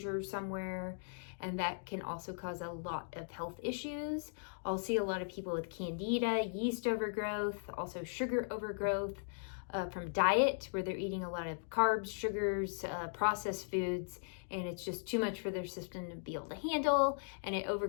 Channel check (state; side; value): silent; right; digital silence